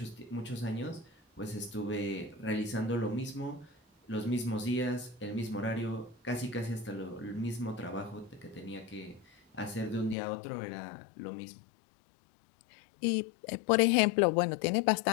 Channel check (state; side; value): drops out; right; at 10.2 s